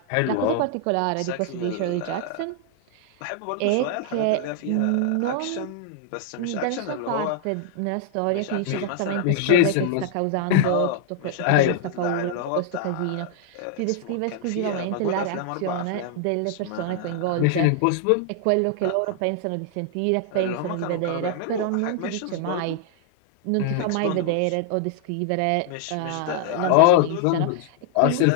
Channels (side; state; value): both; different; correlation 0.00